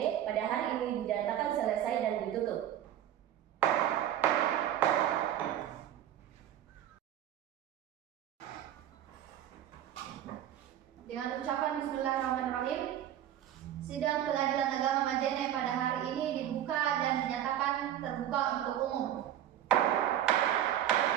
pada hari ini dinyatakan selesai dan ditutup. Dengan ucapan Bismillahirrahmanirrahim, sidang pengadilan agama Majene pada hari ini dibuka dan dinyatakan terbuka untuk umum.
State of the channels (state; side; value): quieter; left; 11.2 dB